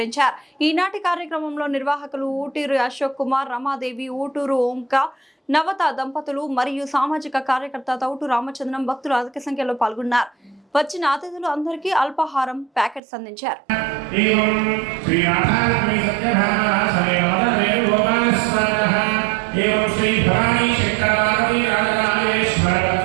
ఈనాటి కార్యక్రమంలో నిర్వాహకులు ఊటూరు అశోక్ కుమార్, రమాదేవి, ఊటూరు ఓంక, నవత దంపతులు మరియు సామాజిక కార్యకర్త తౌటు రామచంద్రం భక్తులు అధిక సంఖ్యలో పాల్గొన్నారు. వచ్చిన అతిథులు అందరికీ అల్పాహారం ప్యాకెట్స్ అందించారు.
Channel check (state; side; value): drops out; left; at 13.0 s